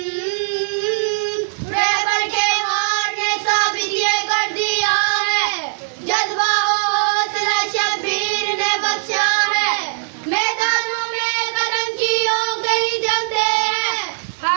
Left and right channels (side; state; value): left; silent; digital silence